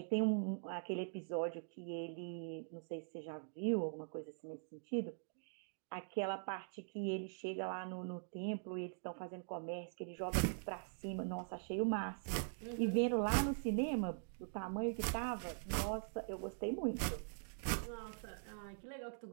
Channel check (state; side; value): silent; left; digital silence